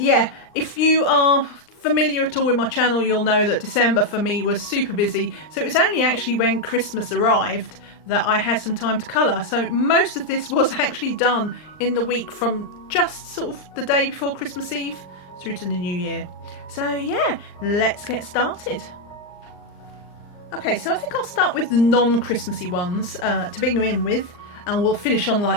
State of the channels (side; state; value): right; late; 39 ms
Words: if you are familiar at all with my channel, you'll know that December for me was super busy. So it was only actually when Christmas arrived that I had some time to colour. So most of this was actually done in the week from just sort of the day before Christmas Eve through to the new year. So yeah, let's get started. Okay, so I think I'll start with the non-Christmassy ones to begin with. And we'll finish on